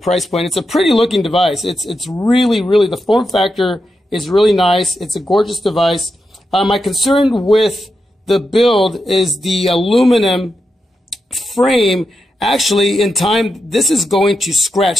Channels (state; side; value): normal; both; correlation 0.87